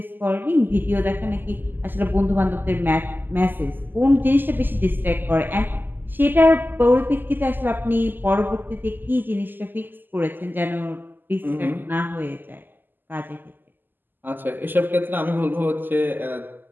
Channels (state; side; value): late; left; 0.091 ms